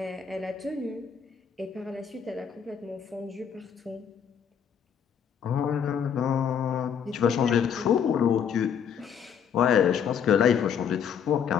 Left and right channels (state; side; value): quieter; right; 7.7 dB